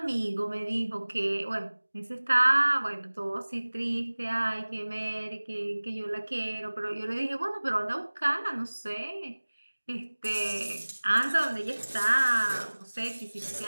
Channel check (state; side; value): inverted; both; correlation -1.00